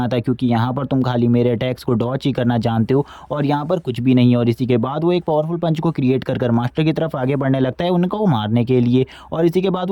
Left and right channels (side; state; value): both; identical; correlation 1.00